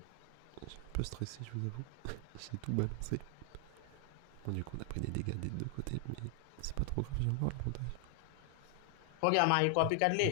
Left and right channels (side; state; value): both; different; correlation 0.00